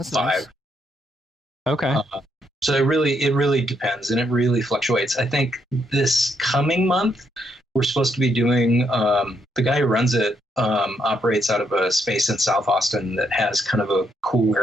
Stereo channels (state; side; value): normal; both; correlation 0.76